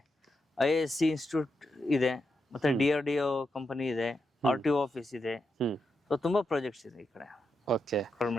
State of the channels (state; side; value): normal; both; correlation 0.85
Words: IISc ಇನ್ಸ್ಟಿಟ್ಯೂಟ್ ಇದೆ, ಮತ್ತೆ DRDO ಕಂಪನಿ ಇದೆ, RTO ಆಫೀಸ್ ಇದೆ. ಸೊ ತುಂಬಾ ಪ್ರಾಜೆಕ್ಟ್ಸ್ ಇದೆ ಈ ಕಡೆ. ಓಕೆ,